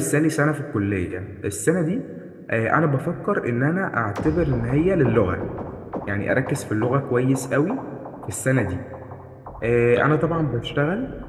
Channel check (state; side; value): identical; both; correlation 1.00